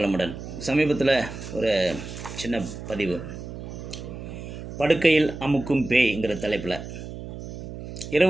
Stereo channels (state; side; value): noise; right; hum, 10 dB below the sound